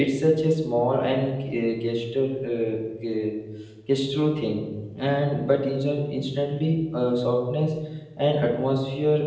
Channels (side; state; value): both; identical; correlation 1.00